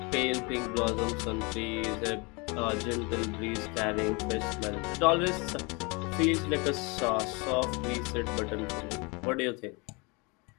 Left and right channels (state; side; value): quieter; right; 29.0 dB